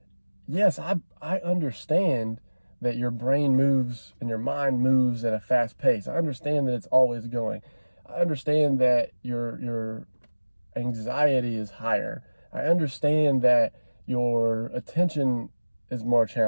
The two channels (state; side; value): inverted; both; correlation -1.00